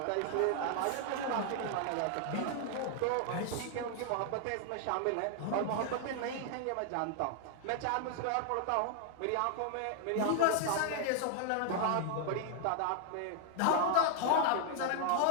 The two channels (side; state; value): both; different; correlation 0.00